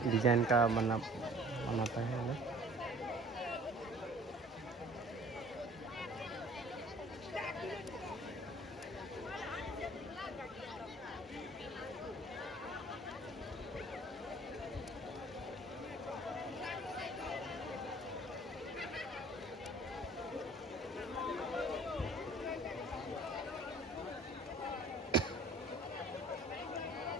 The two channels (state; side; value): normal; both; correlation 0.51